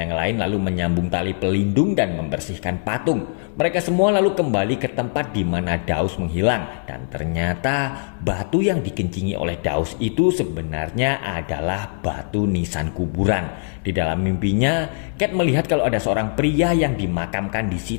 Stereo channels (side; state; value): right; silent; 57 dB below the other